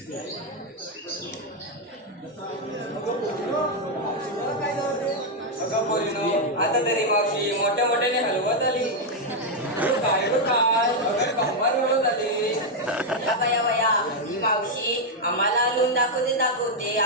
आता तरी मावशी मोठ्या मोठ्याने हलवत आली. काय कंबार हलवत आली. या मावशी आम्हाला आणून दाखवते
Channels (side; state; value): both; normal; correlation 0.00